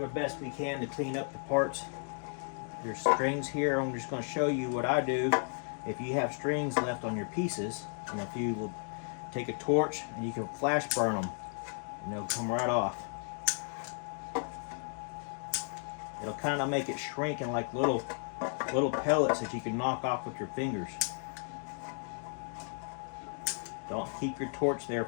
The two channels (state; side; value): silent; right; 55 dB below the other